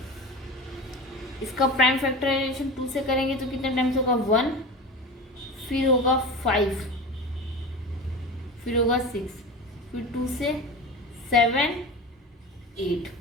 इसका प्राइम फैक्टराइजेशन 2 से करेंगे तो कितने टाइम्स होगा 1, फिर होगा 5, फिर होगा 6, फिर 2 से 7 8,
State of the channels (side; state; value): both; normal; correlation 0.30